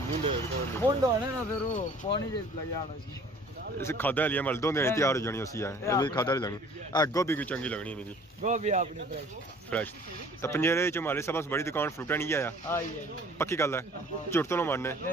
मुंडे मुंड होने ना फिर वो पानी जे लग जाना सी इस खादा लिया मल दो दिन तैयार हो जानी उसी है ये भी खादा लेनी गोभी भी चंगी लगनी मेरी गोभी अपनी फ्रेश तो पंजेरे च हमारे सब बड़ी दुकान फ्रूटा नहीं आया पक्की गल है झूठ तो ना मारने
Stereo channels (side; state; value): both; normal; correlation 0.51